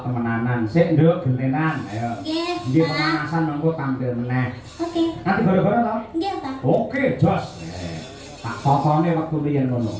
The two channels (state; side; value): identical; both; correlation 1.00